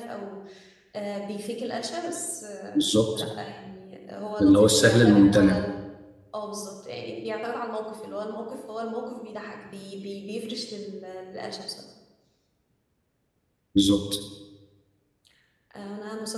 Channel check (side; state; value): both; identical; correlation 1.00